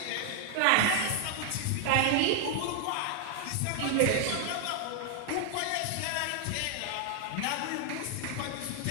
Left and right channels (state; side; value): different; both; correlation 0.00